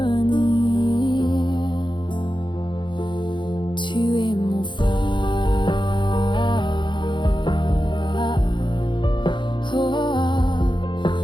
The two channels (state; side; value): late; right; 0.23 ms